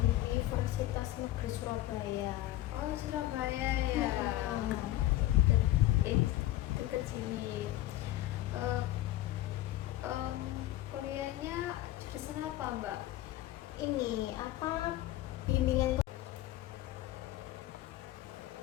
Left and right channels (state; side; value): quieter; right; 15.0 dB